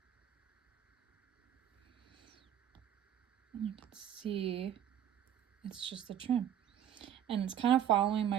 and you can see it's just the trim. And it's kind of following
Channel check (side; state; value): left; quieter; 10.2 dB